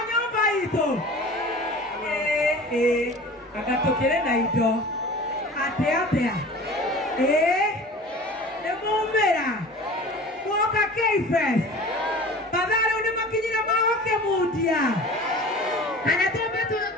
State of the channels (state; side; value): normal; both; correlation 0.40